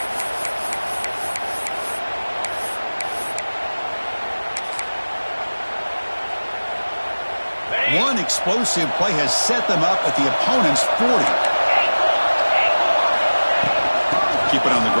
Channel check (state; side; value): inverted; both; correlation -1.00